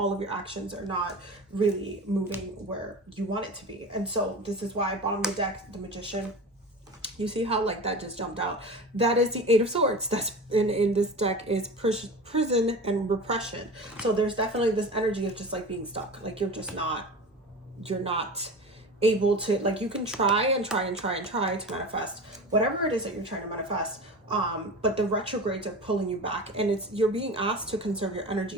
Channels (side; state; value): both; normal; correlation 0.32